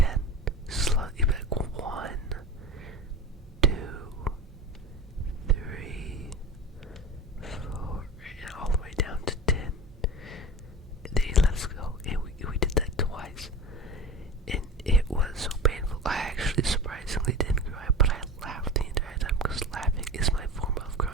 slowly back 1, 2, 3, 4, and all the way down to 10. And then he let us go, and we did that twice. And it was so painful. I actually surprisingly didn't cry, but I laughed the entire time because laughing is my form of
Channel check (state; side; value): normal; both; correlation 0.31